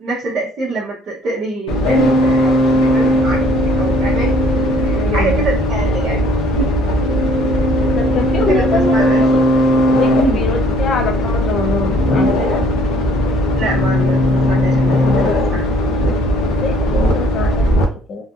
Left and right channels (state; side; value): normal; both; correlation 0.59